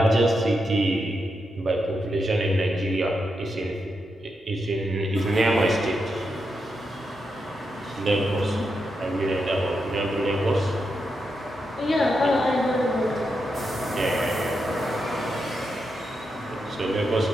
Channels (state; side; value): normal; both; correlation 0.85